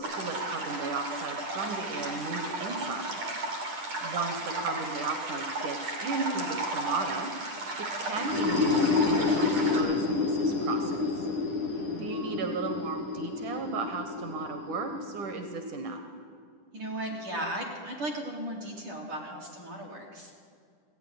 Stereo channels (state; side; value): late; left; 10 ms